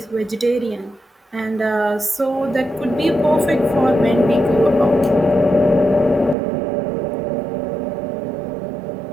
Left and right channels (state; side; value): drops out; left; at 6.4 s